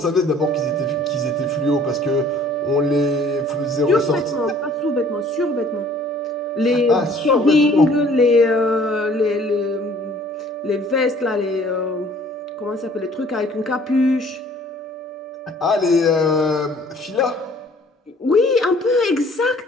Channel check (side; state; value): both; normal; correlation 0.55